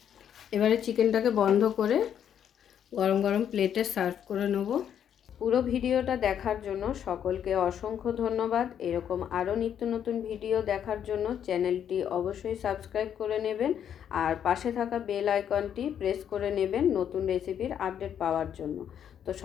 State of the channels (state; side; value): quieter; right; 9.1 dB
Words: এবারে চিকেনটাকে বন্ধ করে গরম গরম প্লেটে সার্ভ করে নেব। পুরো ভিডিওটা দেখার জন্য সকলকে অসংখ্য ধন্যবাদ। এরকম আরও নিত্য নতুন ভিডিও দেখার জন্য চ্যানেলটি অবশ্যই সাবস্ক্রাইব করে নেবেন আর পাশে থাকা বেল আইকনটি প্রেস করে নেবেন নতুন রেসিপির আপডেট পাওয়ার জন্য। তো